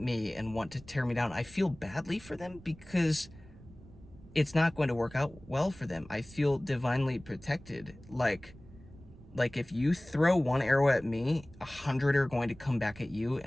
and want to tear me down. I feel badly for them because it's not going to work out well for them. I feel divinely protected. Like if you throw one arrow at me, 100 are going to come back at you,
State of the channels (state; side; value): noise; right; rumble, 21 dB below the sound